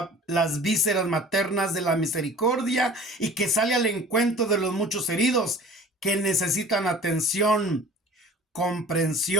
las vísceras maternas de la misericordia y que sale al encuentro de los muchos heridos que necesitan atención,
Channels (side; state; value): both; normal; correlation 0.44